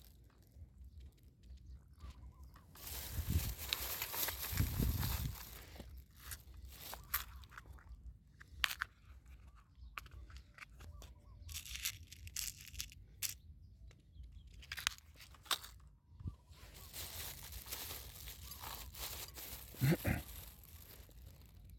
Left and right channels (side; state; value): both; identical; correlation 1.00